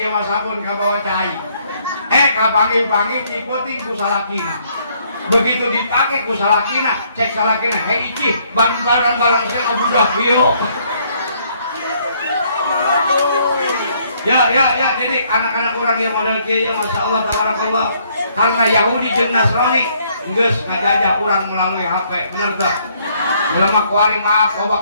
dia mah sabun ka bawa cai. Ka panggil-panggil diputing ku salakina. Begitu dipakai ku salakina, cek salakina, hei icih, barang-barang saya budak hiyo. Ya, jadi anak-anak orang yang model kieu masya Allah tabarakallah. Karena Yahudi jeung Nasrani geus ngajajah urang melalui HP, bener teu? Ulama kuari maaf, oba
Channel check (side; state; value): both; inverted; correlation -0.67